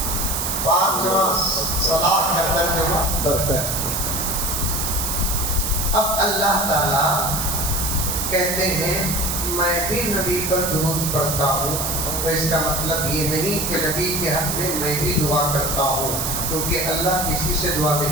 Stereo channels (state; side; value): noise; right; hiss, 1 dB below the sound